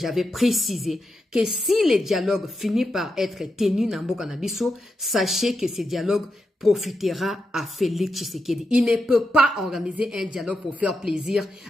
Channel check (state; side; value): normal; both; correlation 0.86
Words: précisé que si les dialogues finissent par être tenus dans Mboka na biso, sachez que ce dialogue profitera à Félix Tshisekedi. Il ne peut pas organiser un dialogue pour faire plaisir